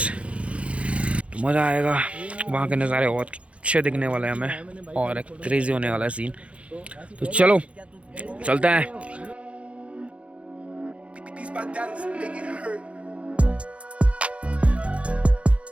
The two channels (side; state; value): left; late; 0.062 ms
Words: तो मज़ा आएगा, वहाँ के नज़ारे बहुत अच्छे दिखने वाले हैं हमें और एक क्रेजी होने वाला है सीन। तो चलो चलते हैं।